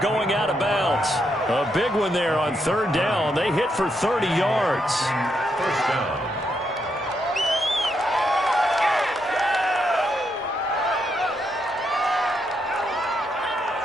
going out of bounds. A big one there on 3rd down. They hit for 30 yards. First down.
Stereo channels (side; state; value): both; normal; correlation 0.79